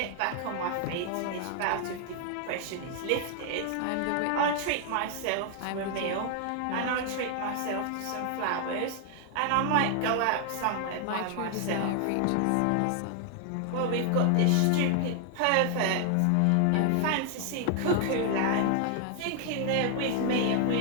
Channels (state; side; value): different; both; correlation 0.00